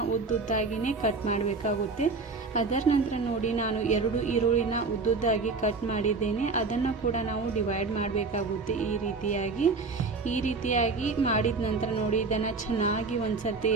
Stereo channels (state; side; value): quieter; left; 4.1 dB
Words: ಉದ್ದುದ್ದಾಗಿನೇ ಕಟ್ ಮಾಡಬೇಕಾಗುತ್ತೆ. ಅದರ ನಂತರ ನೋಡಿ, ನಾನು 2 ಈರುಳ್ಳಿನ ಉದ್ದುದ್ದಾಗಿ ಕಟ್ ಮಾಡಿದ್ದೇನೆ. ಅದನ್ನು ಕೂಡ ನಾವು ಡಿವೈಡ್ ಮಾಡಬೇಕಾಗುತ್ತೆ. ಈ ರೀತಿಯಾಗಿ ಮಾಡಿದ ನಂತರ ನೋಡಿ, ಇದನ್ನು ಚೆನ್ನಾಗಿ ಒಂದ್ಸರ್ತಿ